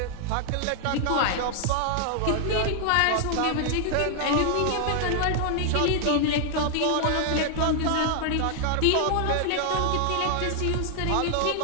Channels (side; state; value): both; different; correlation 0.00